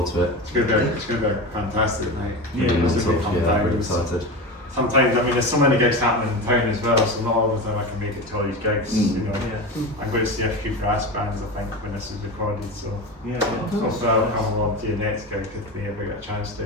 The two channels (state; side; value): normal; both; correlation 0.25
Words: to it. It's going to be a fantastic night. Yeah, Really it's mental. a big fun Yeah, time. really excited. Sometimes, I mean, there's so many gigs happening in town as well, so not all the time I can make it to all these gigs. You know, Yeah. I'm going to see a few brass bands, I think, when this is recorded. So Yeah. hopefully I'll come along to your next gig if we ever get a chance to.